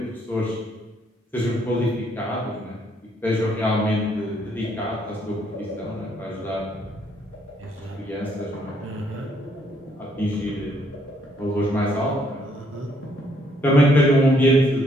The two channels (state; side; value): normal; both; correlation 0.69